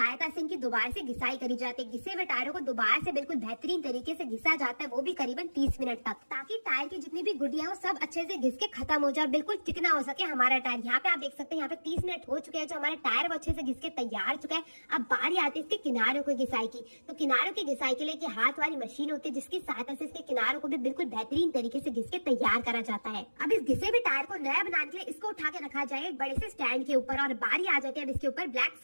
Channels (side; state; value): both; inverted; correlation -1.00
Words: से इनकी दोबारा से घिसाई करी जाती है। घिसे हुए टायरों को दोबारा से बिल्कुल बेहतरीन तरीके से घिसा जाता है, वो भी करीबन 30 मिनट तक, ताकि टायर की जितनी भी गुडिया हो सब अच्छे से घिस के खत्म हो जाए, बिल्कुल चिकना हो सके हमारा टायर। यहाँ पे आप देख सकते हैं, यहाँ पे 30 मिनट हो चुके हैं, जो हमारा टायर वो अच्छे से घिस के तैयार चुका है। अब बारी आती है इसके किनारों की घिसाई की। तो किनारों की घिसाई के लिए की हाथ वाली मशीन होती है, जिसकी सहायता से इसके किनारों को भी बिल्कुल बेहतरीन तरीके से घिस के तैयार करा जाता है। अब इस घिसे हुए टायर को नया बनाने के लिए इसको उठा के रखा जाए एक बड़े से स्टैंड के ऊपर, और बारी आ जाती है अब इसके ऊपर ब्लैक